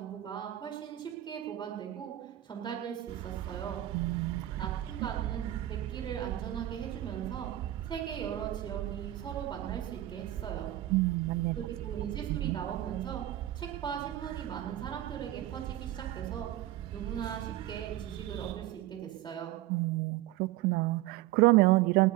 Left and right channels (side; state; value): left; quieter; 14.7 dB